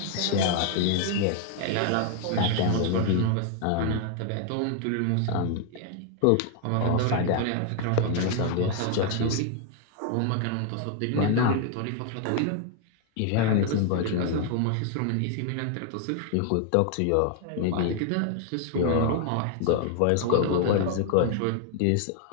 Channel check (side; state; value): both; different; correlation 0.00